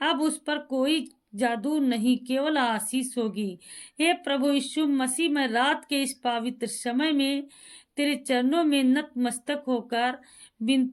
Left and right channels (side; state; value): both; identical; correlation 1.00